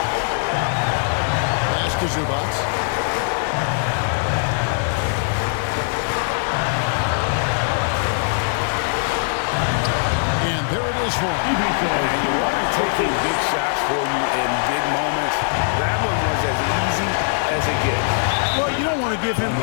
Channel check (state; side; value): silent; right; digital silence